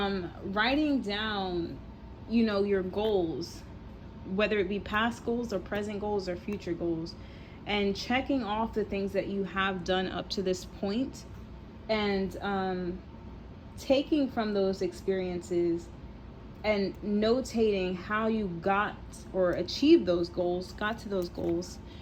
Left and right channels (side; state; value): both; identical; correlation 1.00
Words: down, your goals, whether it be past goals or present goals or future goals, and checking off the things that you have done up to this point, and taking from those experiences and notating how you got or achieved those goals, got to those goals,